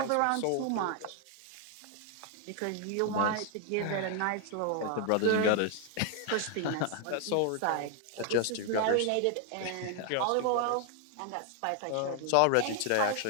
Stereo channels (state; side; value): different; both; correlation 0.00